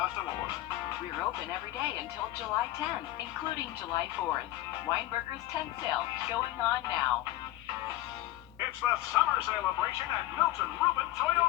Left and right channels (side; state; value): right; quieter; 15.7 dB